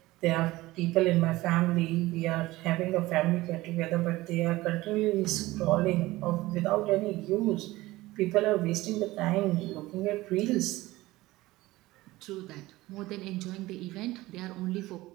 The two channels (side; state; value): left; quieter; 18.6 dB